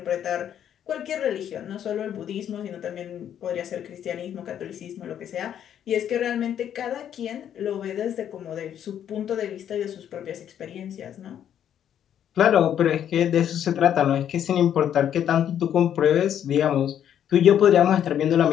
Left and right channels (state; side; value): quieter; right; 9.8 dB